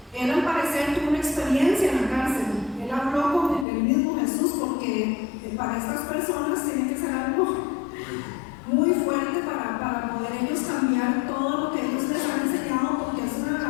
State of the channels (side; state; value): right; drops out; at 3.7 s